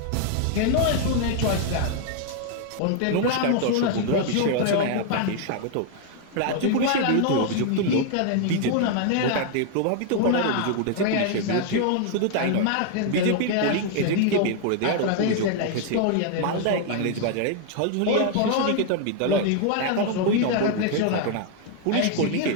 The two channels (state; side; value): different; both; correlation 0.00